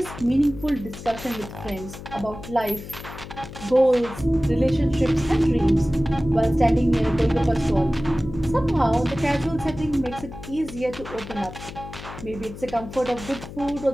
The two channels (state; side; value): noise; left; hum, 13 dB below the sound